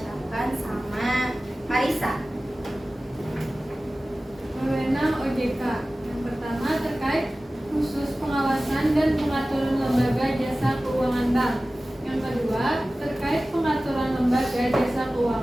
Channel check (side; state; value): both; normal; correlation 0.97